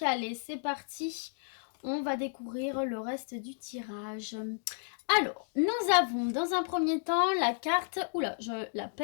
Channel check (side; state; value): right; silent; digital silence